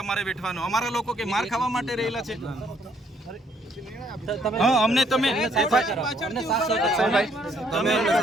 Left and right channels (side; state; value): both; normal; correlation 0.67